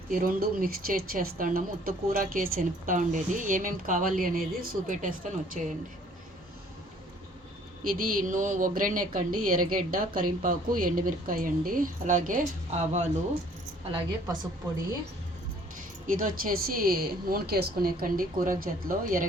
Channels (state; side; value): normal; both; correlation 0.57